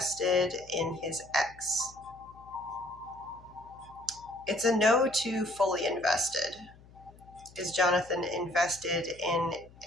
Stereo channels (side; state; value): left; noise; hum, 23 dB below the sound